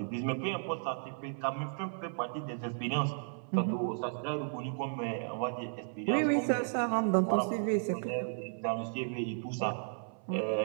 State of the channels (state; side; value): silent; left; 55 dB below the other